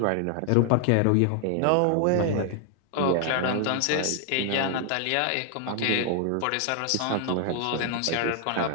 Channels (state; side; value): different; both; correlation 0.00